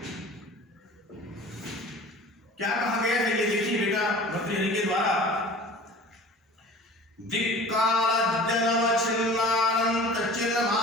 क्या कहा गया है, ये देखिए बेटा भर्तृहरि के द्वारा। दिक्कालज्जनवच्छिन्नानंत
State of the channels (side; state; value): both; normal; correlation 0.42